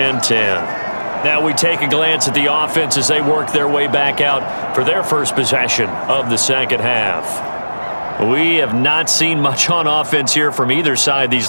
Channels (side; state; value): both; inverted; correlation -1.00